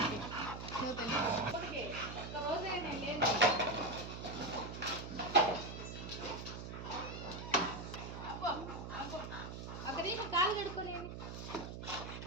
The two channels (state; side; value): noise; right; hum, 8 dB below the sound